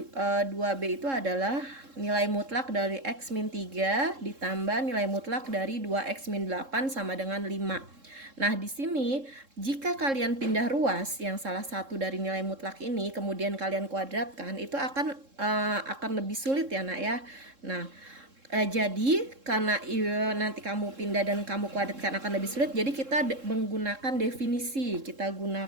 2B itu adalah nilai mutlak dari X min 3 ditambah nilai mutlak dari 2X min 8 sama dengan 5. Nah, di sini jika kalian pindah ruas yang salah satu dari nilai mutlak ini kemudian kalian kuadratkan, itu akan lebih sulit ya, Nak ya. Nah, jadi karena nanti kamu pindah dan kamu kuadratkan akan lebih sulit, jadi kita menggunakan definisi. Kita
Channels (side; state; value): left; late; 3.7 ms